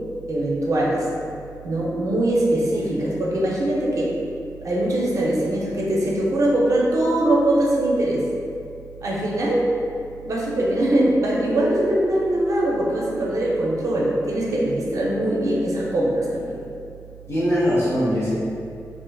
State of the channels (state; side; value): noise; right; hum, 19 dB below the sound